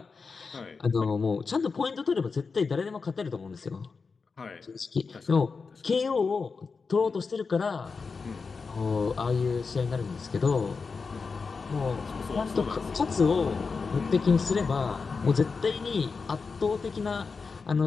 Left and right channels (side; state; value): right; quieter; 4.8 dB